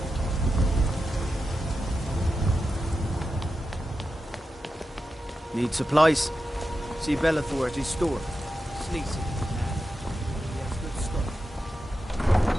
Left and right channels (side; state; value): both; normal; correlation 0.90